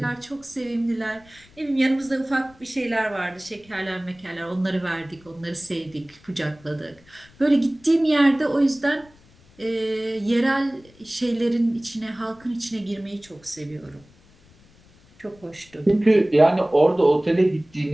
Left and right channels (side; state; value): left; noise; rumble, 28 dB below the sound